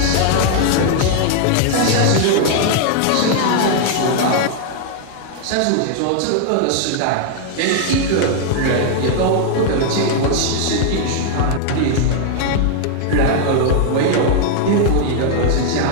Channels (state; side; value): different; both; correlation 0.00